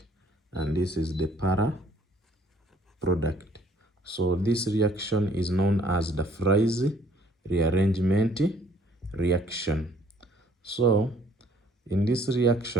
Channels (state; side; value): normal; both; correlation 0.60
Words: and this is the para product. So this reaction is known as the Fry's rearrangement reaction. So in this